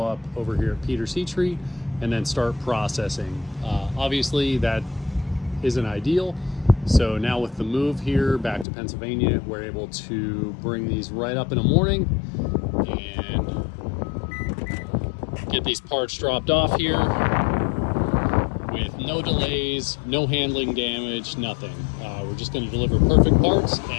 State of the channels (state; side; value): drops out; right; at 8.7 s